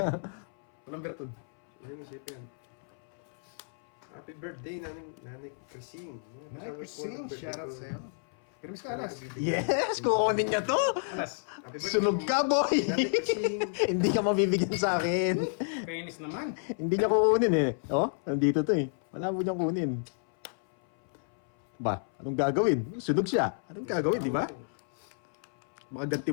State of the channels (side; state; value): right; silent; 58 dB below the other